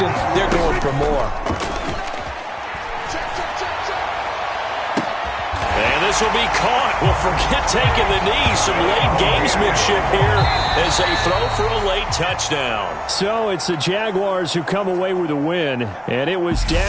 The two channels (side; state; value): both; identical; correlation 1.00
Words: They're going for more. And this will be caught. Well, forget taking the knee. Some late gamesmanship here as they throw for a late touchdown. So it's the Jaguars who come away with a win, and it was